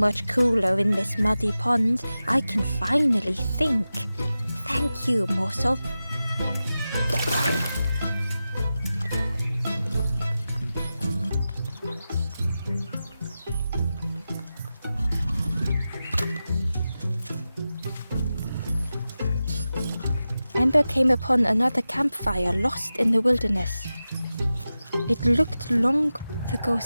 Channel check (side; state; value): both; inverted; correlation -0.94